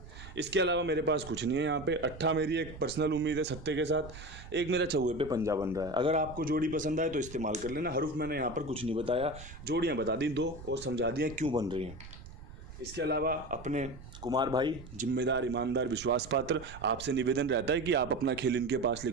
इसके अलावा मेरे पास कुछ नहीं है यहाँ पे। 8 मेरी एक पर्सनल उम्मीद है सत्ते के साथ, एक मेरा चौवे पे पंजा बन रहा है। अगर आपको जोड़ी पसंद आए तो इस्तेमाल कर लेना। हरूफ मैंने यहाँ पर कुछ नहीं बताया, जोड़ियाँ बता दी 2 और समझा दिया क्यों बन रही हैं। इसके अलावा अपने कुमार भाई जिम्मेदार, ईमानदार, विश्वास पात्र, आपसे निवेदन रहता है कि आप अपना खेल इनके पास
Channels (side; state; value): right; noise; rumble, 15 dB below the sound